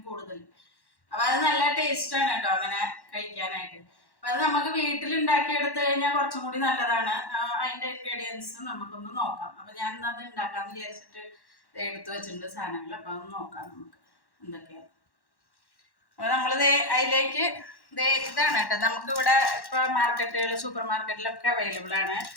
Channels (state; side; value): late; right; 1.1 ms